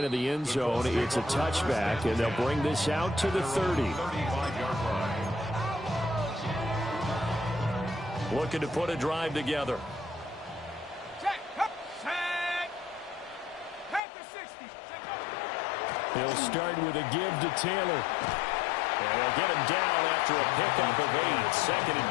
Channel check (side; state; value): right; drops out; at 14.0 s